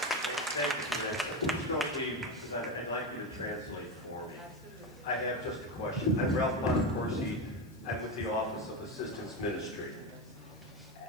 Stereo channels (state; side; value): noise; left; hiss, 28 dB below the sound